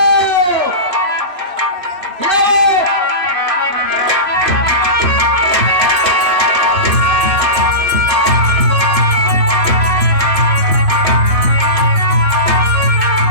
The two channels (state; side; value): late; left; 3.0 ms